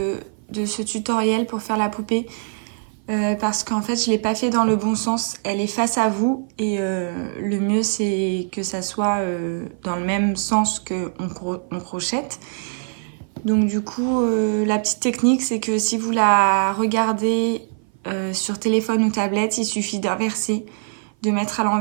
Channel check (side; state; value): left; silent; 56 dB below the other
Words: ce tutoriel pour faire la poupée. Parce qu'en fait je l'ai pas fait dans le bon sens, elle est face à vous et le mieux c'est que ça soit dans le même sens qu'on crochette. Donc du coup la petite technique c'est que si vous la regardez sur téléphone ou tablette, il suffit d'inverser, de mettre à